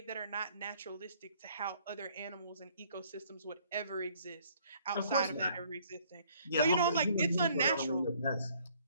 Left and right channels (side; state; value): both; inverted; correlation -0.61